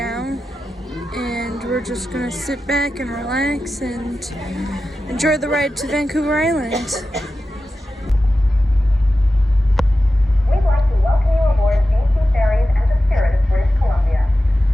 and we're just gonna sit back and relax and enjoy the ride to Vancouver Island. We'd like to welcome you aboard BC Ferries and the Spirit of British Columbia.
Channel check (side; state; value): both; normal; correlation 0.93